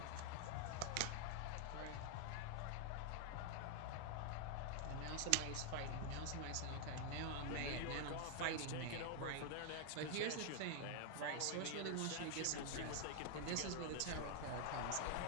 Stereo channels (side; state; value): both; different; correlation 0.00